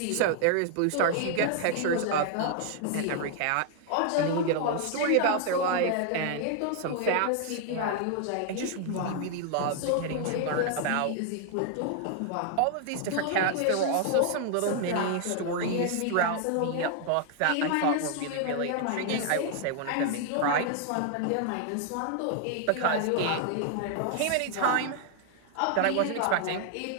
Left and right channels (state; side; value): different; both; correlation 0.00